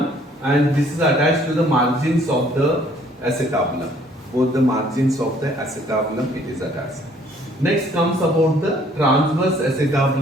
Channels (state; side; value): normal; both; correlation 0.60